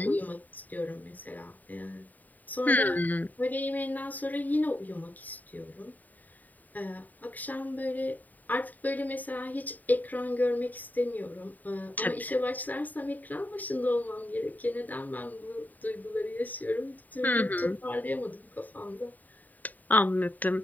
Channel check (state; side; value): late; right; 0.083 ms